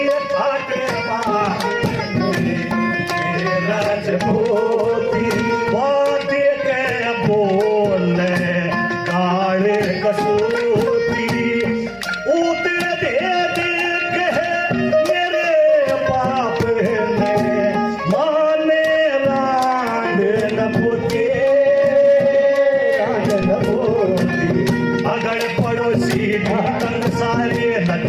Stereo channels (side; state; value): both; identical; correlation 1.00